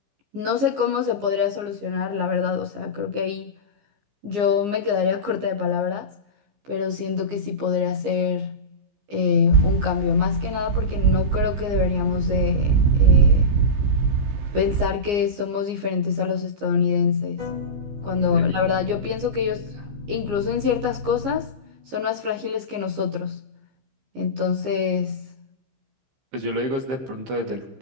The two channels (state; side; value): late; left; 15 ms